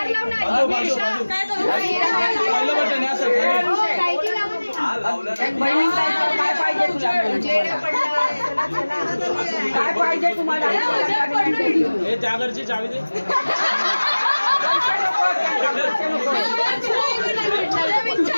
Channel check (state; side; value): inverted; both; correlation -1.00